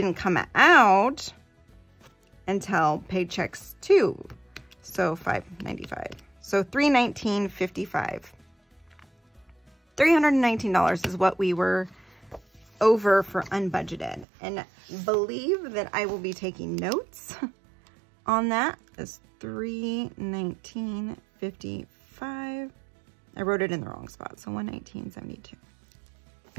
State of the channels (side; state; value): left; drops out; at 14.2 s